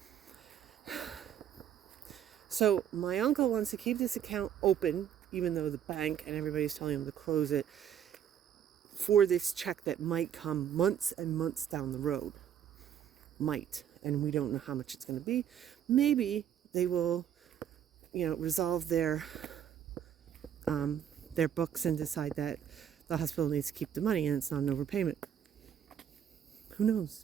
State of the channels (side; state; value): left; quieter; 9.3 dB